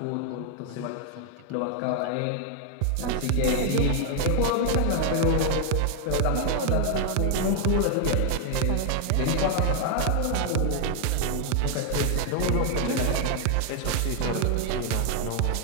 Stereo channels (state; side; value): different; both; correlation 0.00